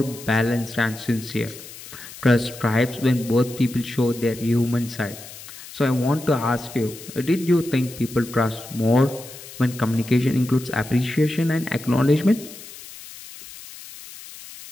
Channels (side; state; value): left; noise; hiss, 15 dB below the sound